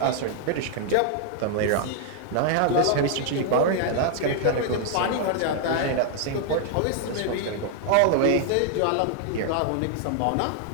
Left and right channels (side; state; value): both; different; correlation 0.00